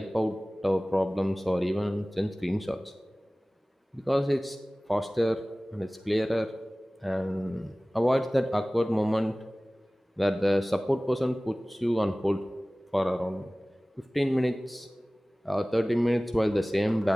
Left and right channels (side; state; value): both; normal; correlation 0.98